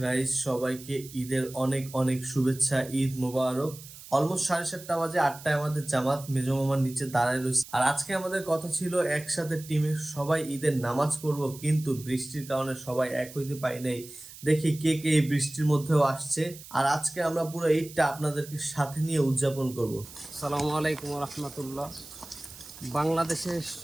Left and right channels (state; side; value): noise; right; hiss, 16 dB below the sound